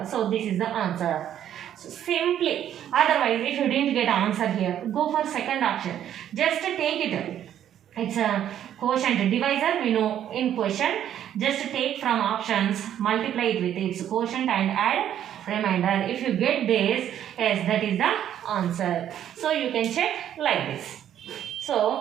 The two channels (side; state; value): left; quieter; 10.5 dB